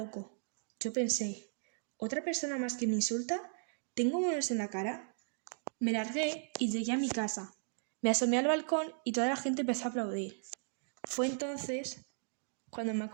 Yo pensé, ¿otra persona más que me insulta? ¿Tengo monos en la cara? Me largué y llegué a mi casa. Me asomé al balcón y toda la gente empezó a aplaudir. Fue entonces cuando me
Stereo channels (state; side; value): silent; left; digital silence